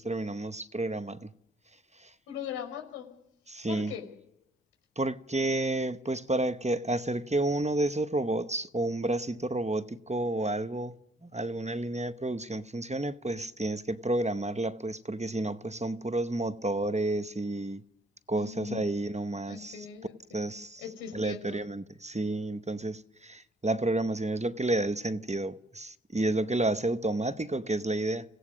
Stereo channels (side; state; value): both; normal; correlation 0.63